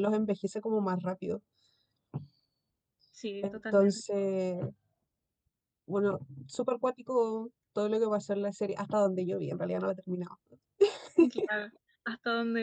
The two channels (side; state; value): both; identical; correlation 1.00